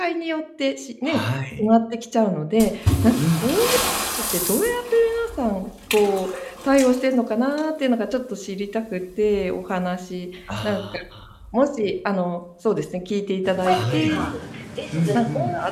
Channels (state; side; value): identical; both; correlation 1.00